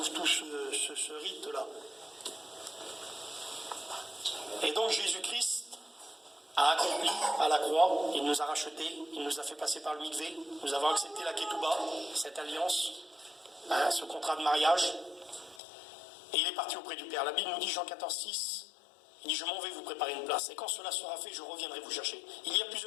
tout ce rite-là. Et donc Jésus-Christ a accompli à la croix, il nous a rachetés, il nous a fait passer par le mikvé, nous avons accepté la ketouba, cette alliance, ce contrat de mariage. Et il est parti auprès du Père. La Bible nous dit, Jean 14, 6, il dit, je m'en vais vous préparer une place. Et quand cela sera fait, je reviendrai vous chercher. Il y a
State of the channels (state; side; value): drops out; right; at 15.6 s